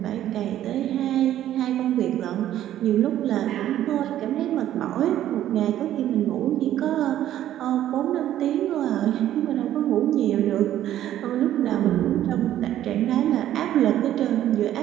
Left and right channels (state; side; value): quieter; left; 12.2 dB